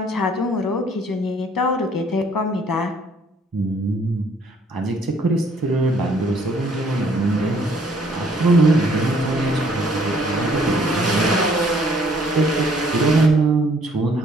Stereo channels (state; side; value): normal; both; correlation 0.62